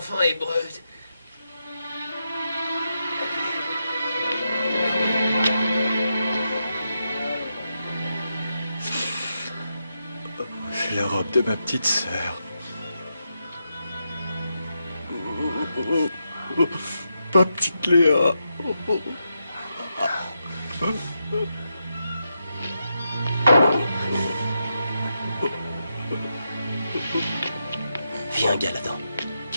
hébreux. C'est la robe de ma petite sœur. Ma petite Léa. Viens, Galadan.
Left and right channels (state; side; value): inverted; both; correlation -0.85